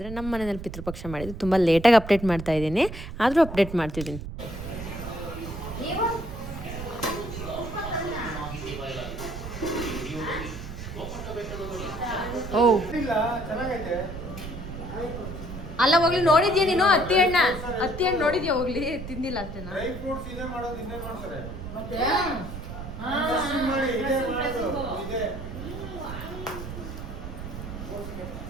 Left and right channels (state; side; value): noise; right; rumble, 9 dB below the sound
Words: ನಮ್ಮ ಮನೆಯಲ್ಲಿ ಪಿತೃಪಕ್ಷ ಮಾಡಿದ್ದು. ತುಂಬ ಲೇಟಾಗಿ ಅಪ್ಡೇಟ್ ಮಾಡ್ತಾ ಇದ್ದೀನಿ, ಆದರೂ ಅಪ್ಡೇಟ್ ಮಾಡ್ತಿದ್ದೀನಿ. ಓ ಅಲ್ಲ ಹೋಗ್ಲಿ, ನೋಡಿದ್ಯಾ ನೀನು ಹತ್ತಿ ಹಣ್ಣು ನೋಡಿದ್ಯಾ? ಹೋಗ್ಲಿ ತಿಂದಿಲ್ಲ ಅಷ್ಟೇನಾ?